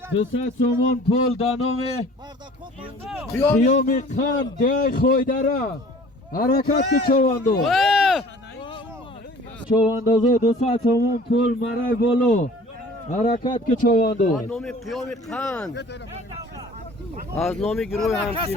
200 سومون پول دانوم خیام خان دیای خویدره حرکت که چوانداز چواندازا 200 سومون پول مرای بولو حرکت که چوانداز نام قیام خان از نام گروه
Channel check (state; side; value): normal; both; correlation 0.48